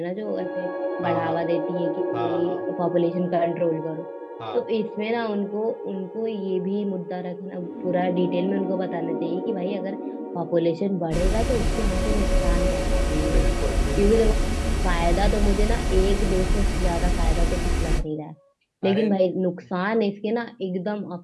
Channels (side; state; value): both; identical; correlation 1.00